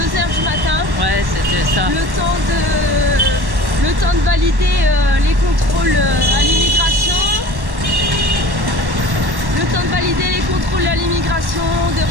du matin. Ouais, c'était ça. Le temps de valider les contrôles à l'immigration. Le temps de valider les contrôles à l'immigration, de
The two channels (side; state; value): left; late; 1.1 ms